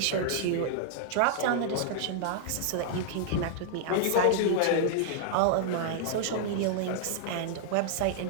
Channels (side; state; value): both; different; correlation -0.01